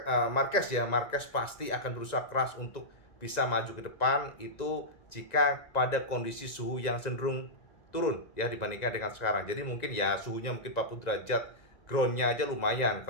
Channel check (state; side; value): late; right; 1.9 ms